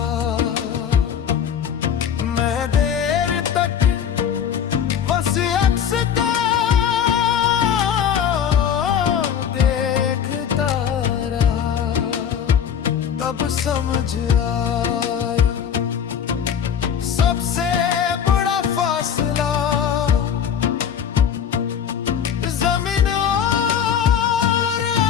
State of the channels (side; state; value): right; quieter; 8.3 dB